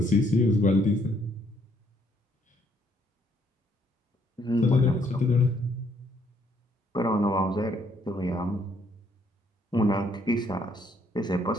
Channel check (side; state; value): both; normal; correlation 0.68